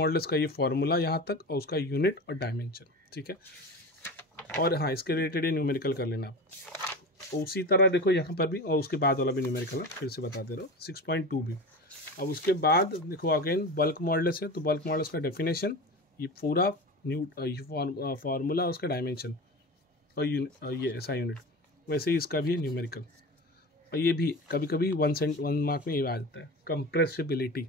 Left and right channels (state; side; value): normal; both; correlation 0.30